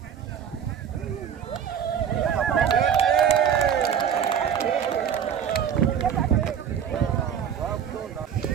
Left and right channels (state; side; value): quieter; left; 8.2 dB